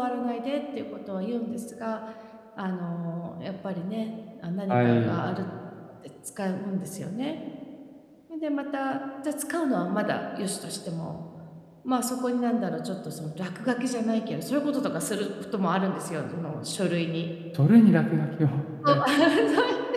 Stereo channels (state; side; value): identical; both; correlation 1.00